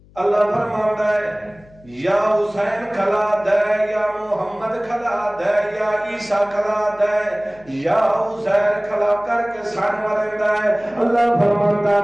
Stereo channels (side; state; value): left; noise; hum, 26 dB below the sound